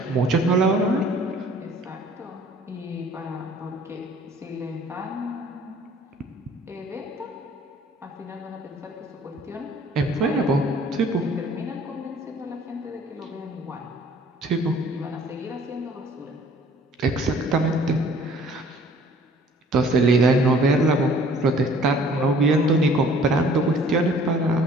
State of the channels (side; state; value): both; normal; correlation 0.54